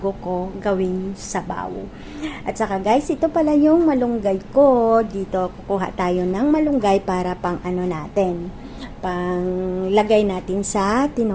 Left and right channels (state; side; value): identical; both; correlation 1.00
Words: ko gawin sabaw. At saka guys, ito pala yung malunggay ko. Dito kukuha tayo ng malunggay para pang ano natin, pang lagay natin sa